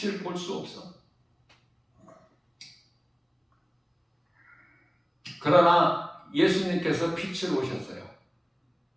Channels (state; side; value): identical; both; correlation 1.00